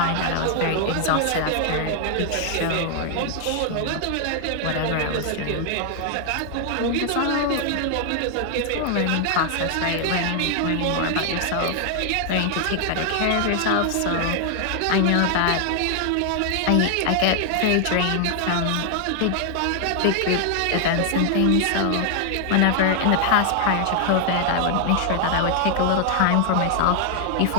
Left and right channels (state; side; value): different; both; correlation 0.00